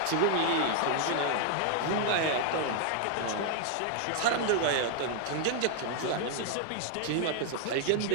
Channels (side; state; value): both; different; correlation 0.00